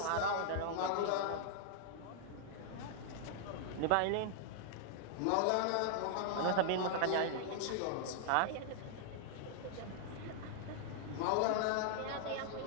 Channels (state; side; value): different; both; correlation 0.00